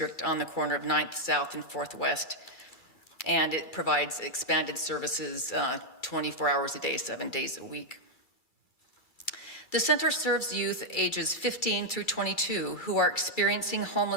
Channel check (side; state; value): right; late; 2.3 ms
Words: on the corner of 9th South and 4th West. And it provides expanded services 24 hours a day, 7 days a week. The center serves youth ages 15 through 22 who are experiencing